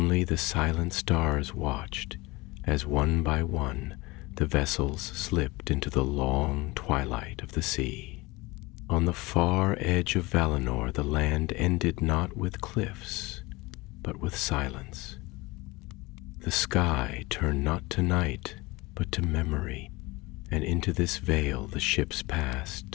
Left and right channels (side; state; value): right; quieter; 22.6 dB